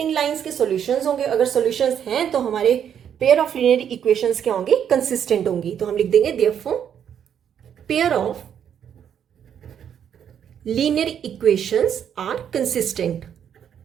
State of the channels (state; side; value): quieter; left; 8.7 dB